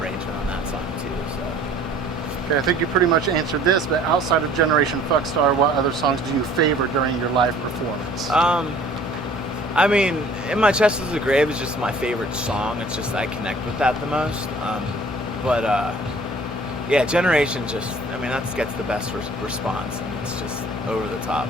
on that song too. So. Okay, I think you pretty much answered this, but outside of Generation Fuckstar, what other songs do you favor during your live performance? I mean, In My Chest Is a Grave is just my favorite song. It's just I connect with that the most. Yeah, Generation just, I mean, that gets the best response, and it's just over the top,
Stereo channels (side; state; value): both; normal; correlation 0.52